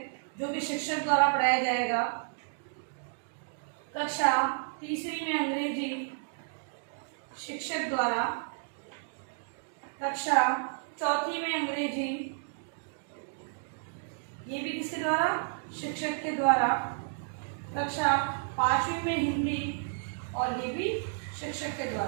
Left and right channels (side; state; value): left; silent; digital silence